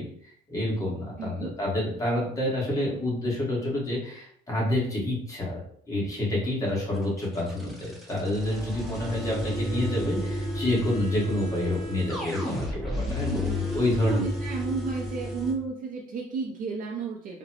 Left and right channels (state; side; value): normal; both; correlation 0.66